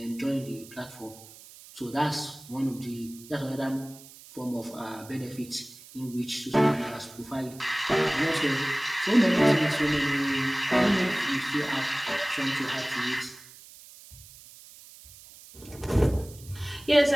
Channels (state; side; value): noise; right; hiss, 20 dB below the sound